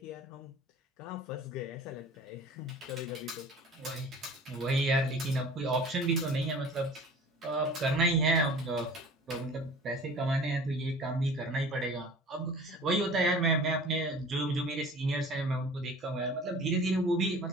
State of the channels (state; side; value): normal; both; correlation 0.43